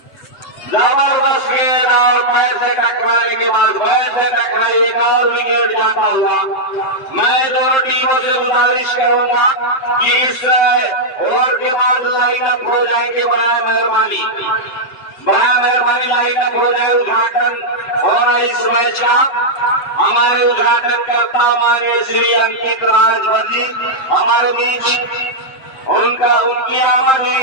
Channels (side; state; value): right; late; 7.6 ms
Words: जबरदस्त गेंद और पैर से टकराने के बाद बैट से टकराई, एक और विकेट जाता हुआ। मैं दोनों टीमों से गुजारिश करूंगा कि इस ओवर के बाद लाइन अप हो जाएंगे बराए मेहरबानी। बड़ा मेहरबानी लाइनअप हो जाए, उद्घाटन होना इस मैच का। हमारे उद्घाटन करता माननीय श्री अंकित राजभर जी हमारे बीच, उनकी आमद हुई